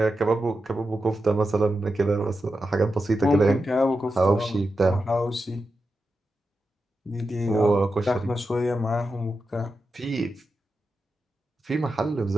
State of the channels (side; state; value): both; normal; correlation 0.89